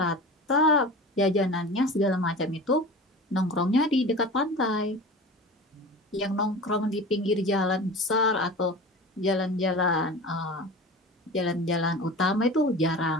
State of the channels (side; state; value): both; normal; correlation 0.34